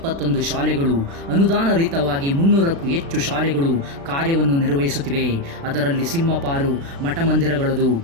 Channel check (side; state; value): left; late; 36 ms